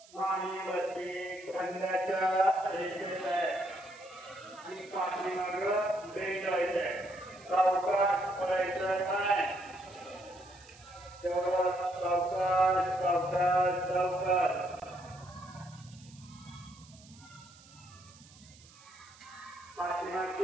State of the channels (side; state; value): right; noise; hiss, 23 dB below the sound